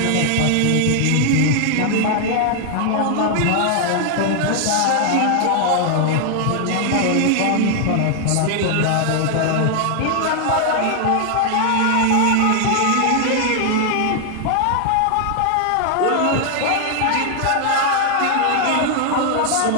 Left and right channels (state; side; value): different; both; correlation 0.00